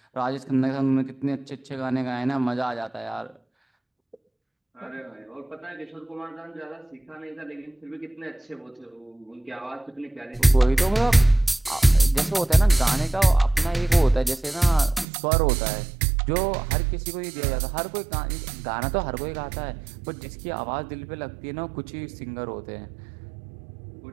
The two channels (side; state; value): left; drops out; at 15.1 s